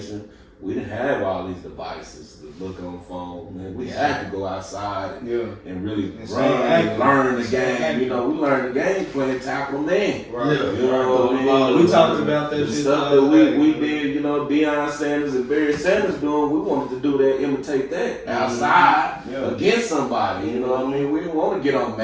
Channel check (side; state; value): both; identical; correlation 1.00